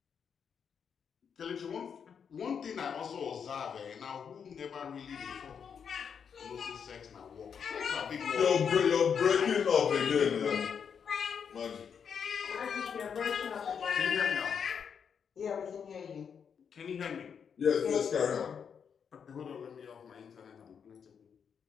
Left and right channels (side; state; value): right; quieter; 7.1 dB